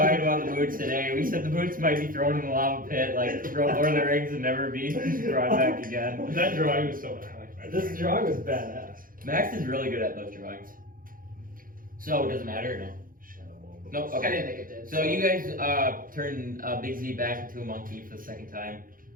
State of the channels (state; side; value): late; left; 0.41 ms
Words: about the boots today. We said the boots might be thrown in the lava pit, like Lord of the Rings, and never be brought back again. That drawing was so bad. This drawing was badass. Max is really good at those drawings. So, does it matter or no? Nope, I okay. didn't think it did. So you guys turn Big Z back into a monkey for the second time.